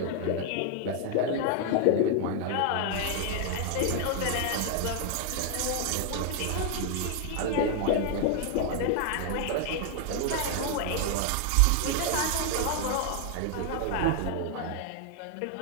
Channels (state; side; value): different; both; correlation 0.00